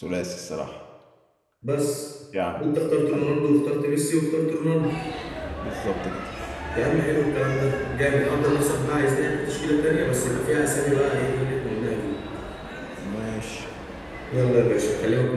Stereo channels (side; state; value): both; identical; correlation 1.00